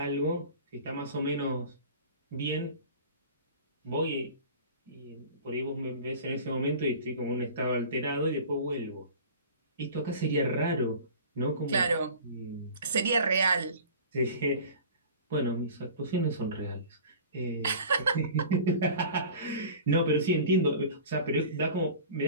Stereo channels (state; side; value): inverted; both; correlation -0.40